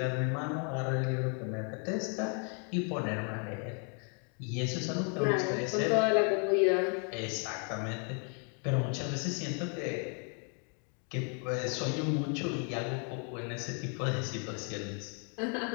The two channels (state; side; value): quieter; right; 39.1 dB